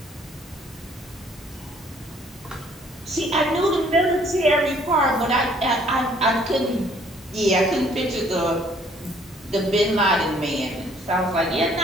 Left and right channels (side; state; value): both; normal; correlation 0.60